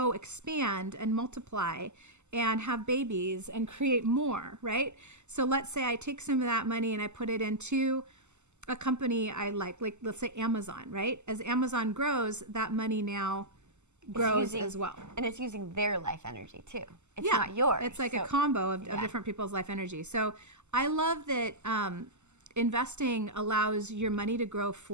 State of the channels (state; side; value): late; left; 0.83 ms